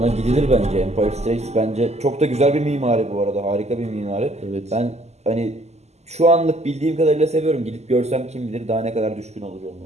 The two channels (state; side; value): late; left; 0.32 ms